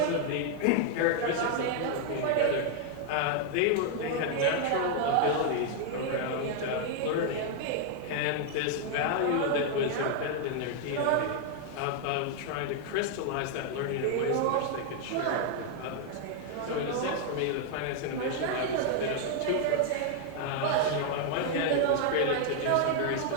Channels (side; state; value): both; different; correlation 0.00